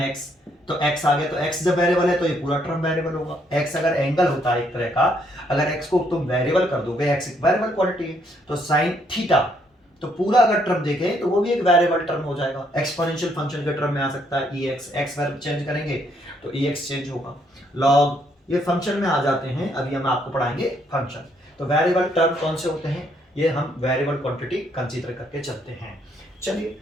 x, तो x आ गया, तो x जब वेरिएबल है तो ये पूरा टर्म वेरिएबल होगा। x अगर एंगल होता है एक तरह का, अगर x को तुम वेरिएबल कर दोगे, x एक वेरिएबल क्वांटिटी है, तो साइन थीटा, तो पूरा अगर टर्म देखें तो वो भी एक वेरिएबल टर्म हो जाएगा। एक्सपोनेंशियल फंक्शन के टर्म में आ सकता है ex, x वेरिएबल चेंज करेंगे तो ex चेंज होगा। लॉग, ये फंक्शन में आ जाते हैं, अभी हम आपको पढ़ाएंगे फंक्शन। तो वेरिएबल टर्म कौन से होते हैं, ये हम वेरिएबल क्वांटिटी कंसीडर करके चलते हैं। चलिए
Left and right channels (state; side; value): normal; both; correlation 0.70